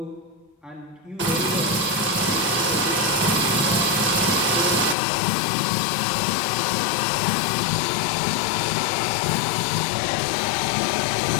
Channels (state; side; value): drops out; right; at 5.0 s